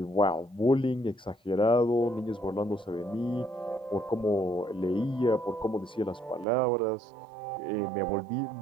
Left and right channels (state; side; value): drops out; left; at 6.5 s